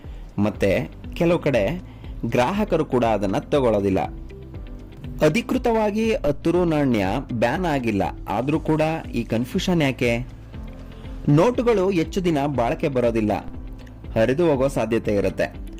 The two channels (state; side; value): identical; both; correlation 1.00